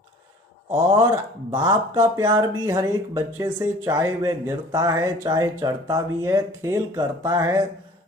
और बाप का प्यार भी हर एक बच्चे से, चाहे वह गिरता है, चाहे चढ़ता भी है, खेल करता है,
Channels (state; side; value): normal; both; correlation 0.49